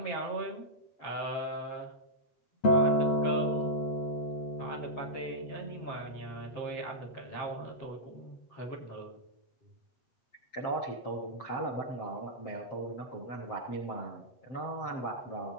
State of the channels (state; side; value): late; right; 7.5 ms